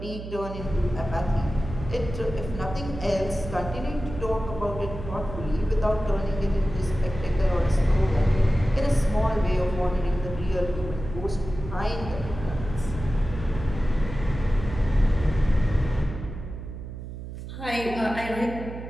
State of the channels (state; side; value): noise; right; hum, 10 dB below the sound